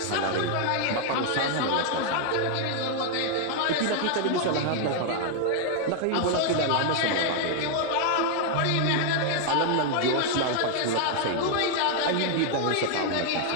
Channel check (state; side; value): different; both; correlation 0.00